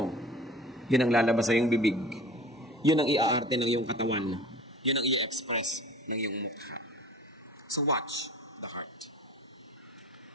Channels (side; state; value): both; normal; correlation 0.42